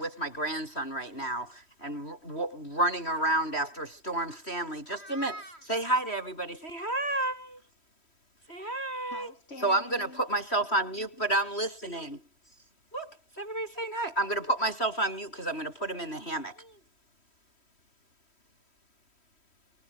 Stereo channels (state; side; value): late; right; 3.1 ms